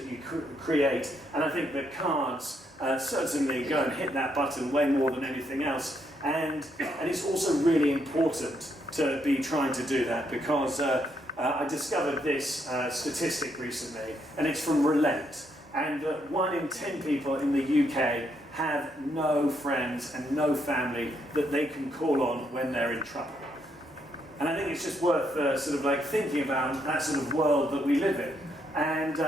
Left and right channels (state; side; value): normal; both; correlation 0.76